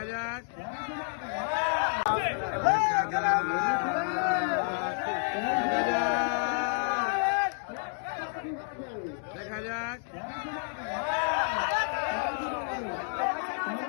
যাক দেখা যাক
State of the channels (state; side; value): silent; right; digital silence